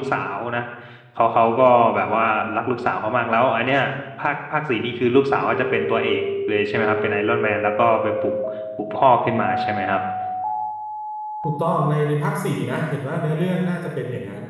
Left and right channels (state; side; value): identical; both; correlation 1.00